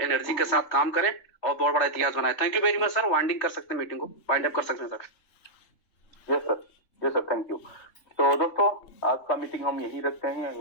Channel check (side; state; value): right; late; 3.3 ms